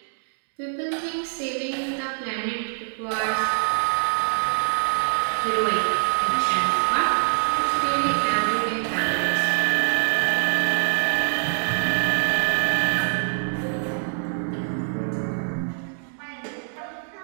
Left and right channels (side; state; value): left; silent; digital silence